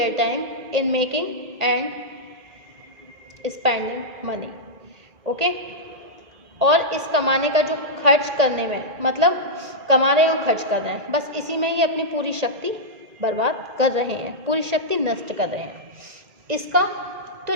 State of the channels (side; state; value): left; late; 1.8 ms